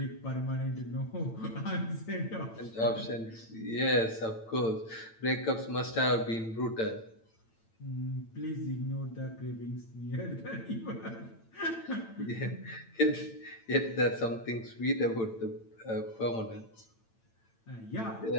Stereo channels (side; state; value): right; late; 8.9 ms